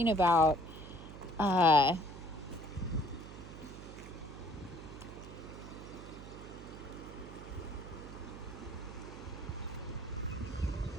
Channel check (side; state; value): right; noise; hum, 13 dB below the sound